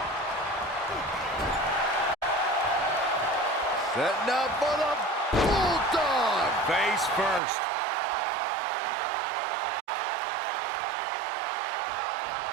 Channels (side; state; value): left; drops out; at 7.4 s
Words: Setting up for the Bulldog. Face first.